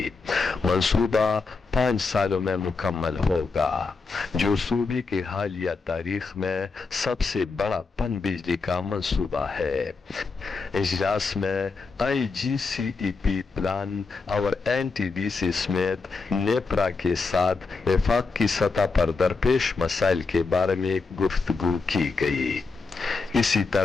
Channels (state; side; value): quieter; right; 4.3 dB